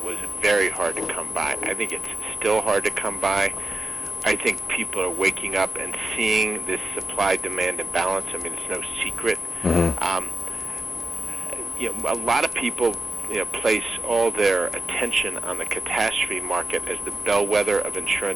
was very hard to come by. I think it's still hard to come by. I think people are waking up and seeing this supply-demand imbalance. I mean, it's no secret. A lot of people place all their attention on the catastrophe market as the bellwether of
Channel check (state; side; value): normal; both; correlation 0.91